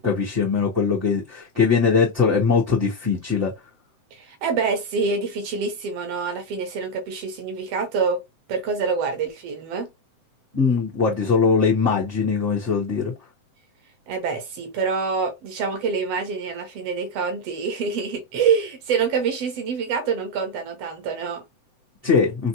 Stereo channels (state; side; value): late; left; 7.8 ms